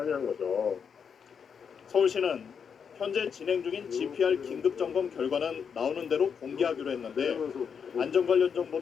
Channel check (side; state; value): right; quieter; 6.8 dB